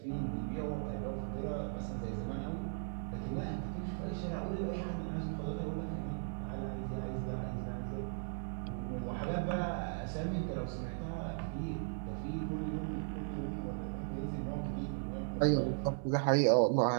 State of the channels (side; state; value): left; silent; digital silence